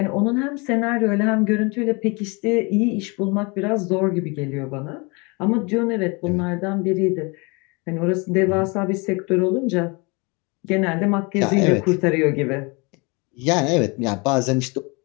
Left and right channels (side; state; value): right; quieter; 29.0 dB